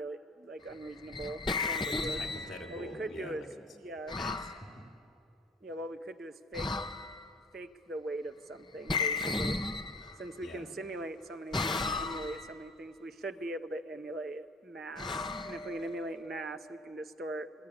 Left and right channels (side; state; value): both; normal; correlation 0.47